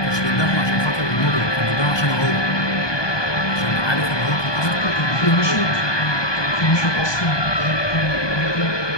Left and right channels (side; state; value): right; late; 1.2 ms